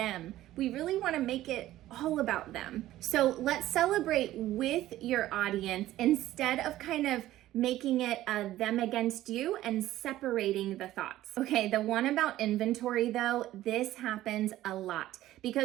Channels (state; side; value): quieter; left; 14.6 dB